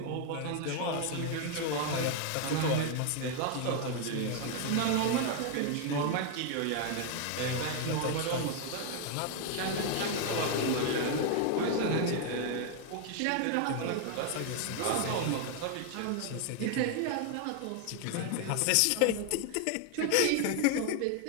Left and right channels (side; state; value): both; different; correlation 0.00